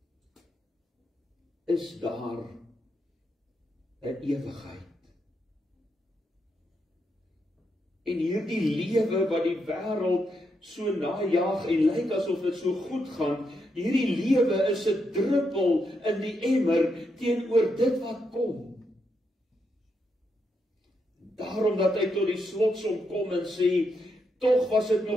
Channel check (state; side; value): normal; both; correlation 0.81